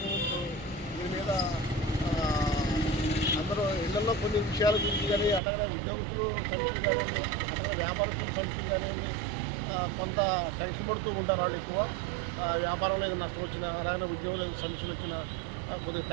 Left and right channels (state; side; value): drops out; left; at 5.4 s